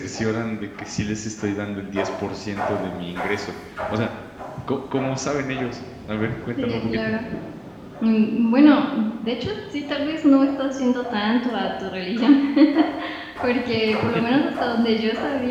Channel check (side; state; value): both; identical; correlation 1.00